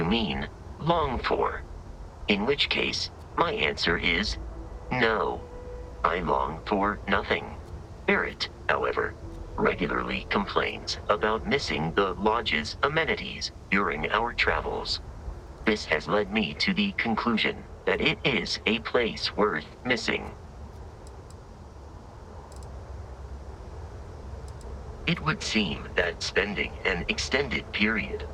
mean long for, in which case my answer is no. I long for nothing. Barrett, however, regularly complains about missing the Lodge's amenities during our travels. This has led me to the conclusion that it is a place worth missing. It would seem that spending an extended period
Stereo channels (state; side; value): identical; both; correlation 1.00